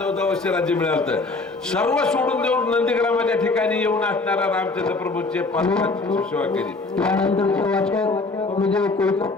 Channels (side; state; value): right; quieter; 3.6 dB